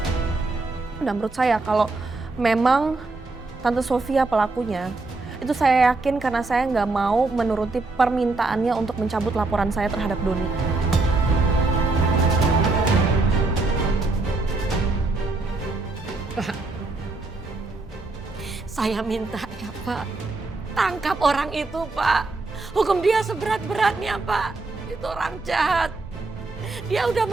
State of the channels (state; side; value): quieter; left; 3.4 dB